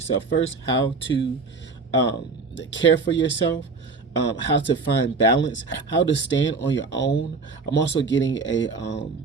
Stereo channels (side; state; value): left; quieter; 4.3 dB